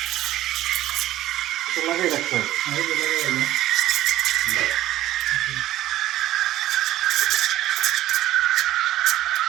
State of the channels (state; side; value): quieter; left; 14.2 dB